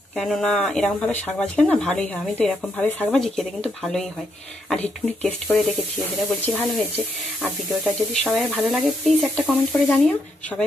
কেননা এরকমভাবে শাক ভাজলে না ভালোই হয়। আমি তো এরকমভাবে শাক ভাজি, খেতে কিন্তু ভালোই হয়। আর একটুখানি টেস্ট করে দেখেছি, এদের বলছি ভালো হয়েছে। আর ভিডিওটা যদি সবাই ভালো লাগে প্লিজ একটা কমেন্ট করে জানিও। সবাই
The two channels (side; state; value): both; normal; correlation 0.78